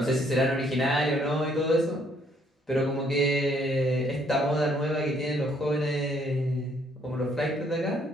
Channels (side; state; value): both; normal; correlation 0.67